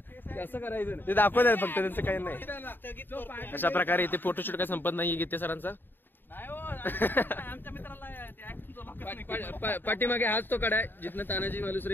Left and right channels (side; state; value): right; late; 0.095 ms